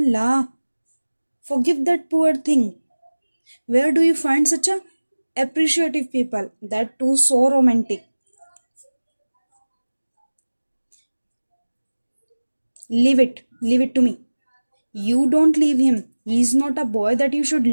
forgive that poor thing. Where do you find such a appreciative people? That too so romantic. Leave it to me. You don't leave him. He's not a boy that you should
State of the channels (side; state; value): both; inverted; correlation -1.00